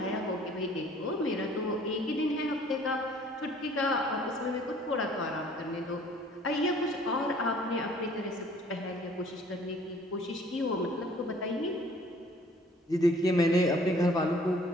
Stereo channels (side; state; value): both; normal; correlation 0.55